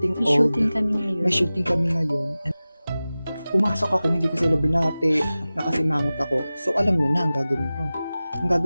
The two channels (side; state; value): both; inverted; correlation -0.97